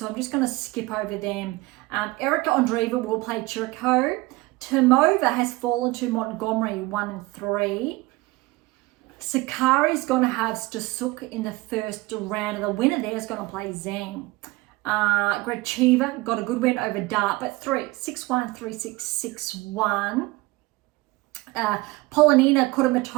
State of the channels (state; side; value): quieter; left; 21.5 dB